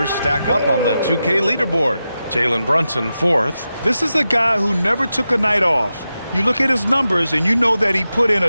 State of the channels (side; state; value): both; inverted; correlation -0.91